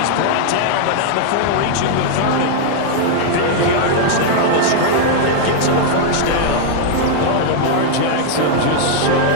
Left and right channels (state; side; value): different; both; correlation -0.01